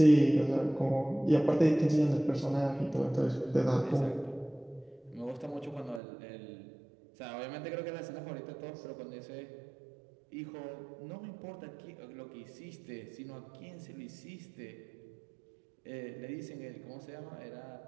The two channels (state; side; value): drops out; left; at 6.0 s